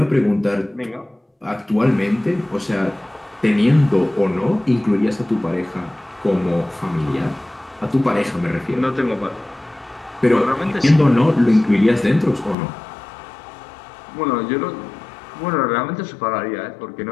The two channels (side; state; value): right; drops out; at 12.6 s